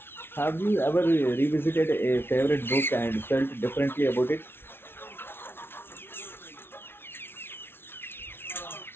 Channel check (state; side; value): late; right; 0.11 ms